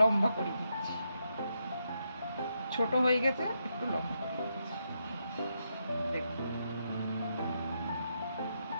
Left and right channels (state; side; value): inverted; both; correlation -0.81